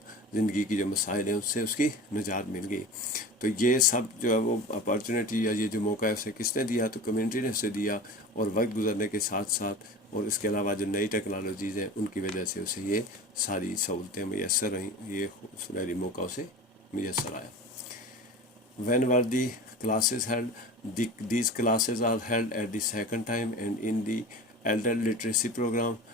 ज़िंदगी की जो मसाइल हैं उससे उसकी निजात मिल गई। तो ये सब जो है वो अपॉर्चुनिटी या ये जो मौका है उसे किसने दिया, तो कम्युनिटी ने उसे दिया। और वक्त गुजरने के साथ साथ और इसके अलावा जो नई टेक्नोलॉजीज़ हैं उनकी वजह से उसे ये सारी सहूलतें मैसर रहीं, ये सुनहरी मौका उसे मैसर आया। When were the classes held? These classes are held at the second time and in the elder literacy program.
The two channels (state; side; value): normal; both; correlation 0.34